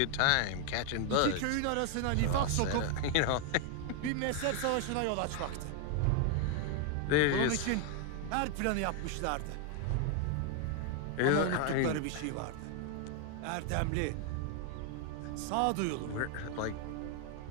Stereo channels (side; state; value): both; different; correlation 0.00